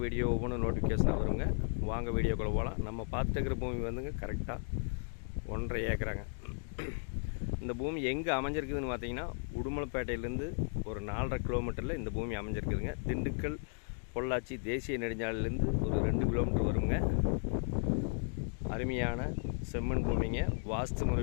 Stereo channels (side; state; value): right; silent; 54 dB below the other